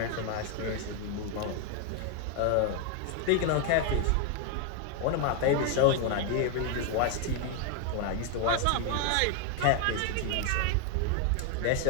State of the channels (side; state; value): both; different; correlation 0.01